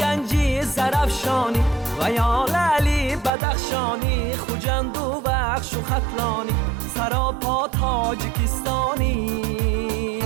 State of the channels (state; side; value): drops out; left; at 3.3 s